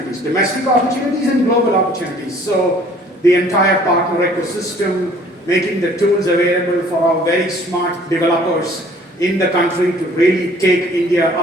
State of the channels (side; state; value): both; normal; correlation 0.55